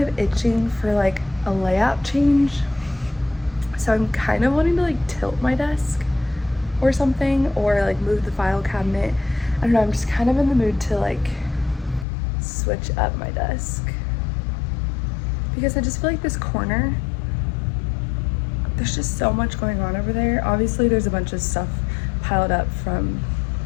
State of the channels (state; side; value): drops out; right; at 12.1 s